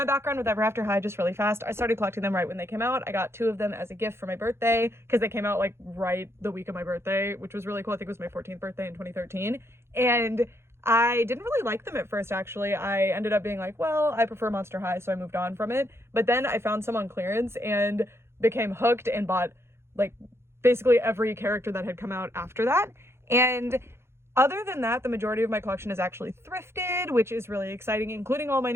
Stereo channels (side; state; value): left; late; 0.12 ms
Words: background with Ever After High, just really fast, I started collecting them right when they came out. I got 2 of them as a gift for my birthday because they came out like right the week of my birthday, which was really cool. I think it was my 14th birthday in 2013. And I didn't really like them at first, actually. I ended up being like, well, I prefer Monster High, so I moved on from it. But then I found some on clearance and became hooked and bought like basically every character that had come out after that. And other than that, the majority of my collection is actually thrifted, which is really exciting, including all my